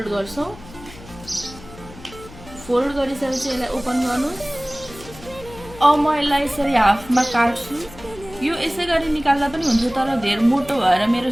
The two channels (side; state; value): left; noise; hum, 18 dB below the sound